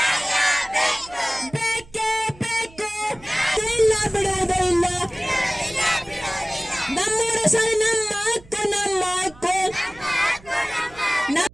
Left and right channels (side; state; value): right; noise; hum, 23 dB below the sound